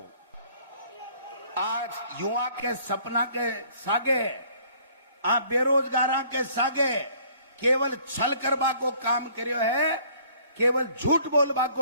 आज युवा के सपना के सागे, आप बेरोजगार के सागे केवल छल करवा को काम करियो है, केवल झूठ बोलवा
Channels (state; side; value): inverted; both; correlation -0.58